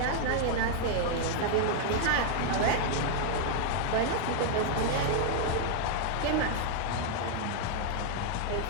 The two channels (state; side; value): different; both; correlation 0.00